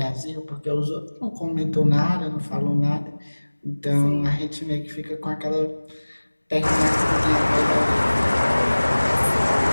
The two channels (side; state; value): both; inverted; correlation -1.00